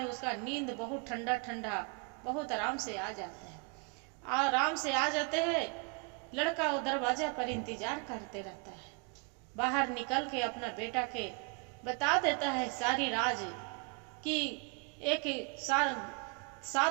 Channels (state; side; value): quieter; left; 33.5 dB